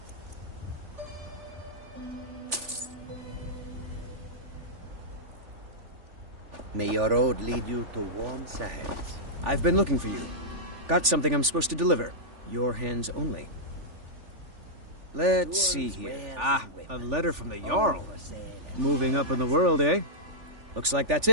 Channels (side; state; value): left; late; 3.4 ms